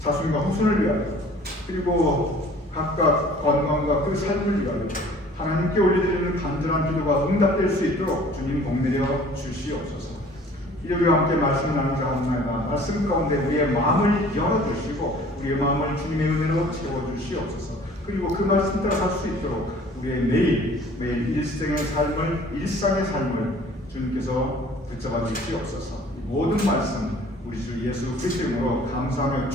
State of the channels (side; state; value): both; normal; correlation 0.51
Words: 후손을 위하여 그리고 각각 건강과 그 삶을 위하여 하나님께 올려드리는 간절한 기도가 응답될 수 있도록 주님 복내려 주시옵소서. 일요일과 함께 말씀을 나누자 하옵나이다. 말씀 가운데 우리의 마음을 열어주시고 우리의 마음을 주님의 은혜로 채워주시옵소서. 그리고 그 말씀 따라 살 수 있도록 우리의 매일 일상의 삶을 주님께서 붙잡아 주시옵소서. 모든 말씀 우리 주 예수 그리스도 이름으로 감사하며